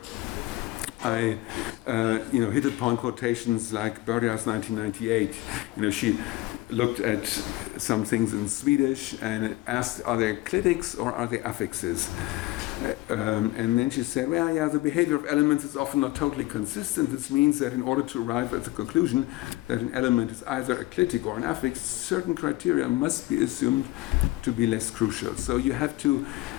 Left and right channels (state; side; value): quieter; right; 19.1 dB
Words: I hit upon quotations like Börja's 1998. She looked at some things in Swedish and asked, are they clitics or are they affixes? And then she said, well, yeah, the behavior of elements is often not totally consistent. This means that in order to arrive at the conclusion that an element is either a clitic or an affix, certain criteria must be assumed to be less crucial. So you have to